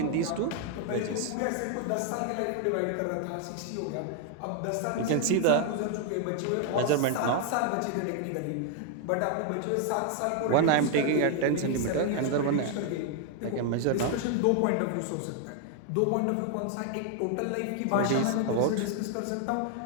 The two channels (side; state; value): both; different; correlation 0.00